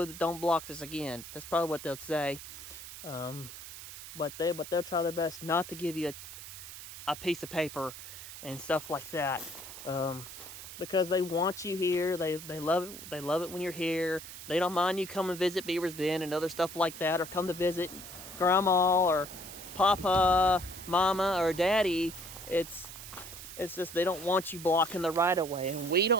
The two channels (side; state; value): right; noise; hiss, 12 dB below the sound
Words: block this again." That's probably what they'll say. But they'll try their best not to give you a piece of paper and stuff like that. Because they want you here. They love it. They love it when you're here. They don't mind you come and visit Beaver's Bend and other stuff like that, or come to visit Grandma or Papa, Mama, or Daddy. It's just they don't want you blocking the right of way, and we